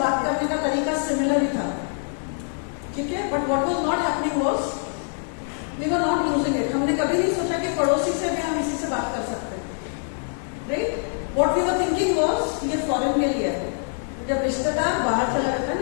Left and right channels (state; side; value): silent; right; 62 dB below the other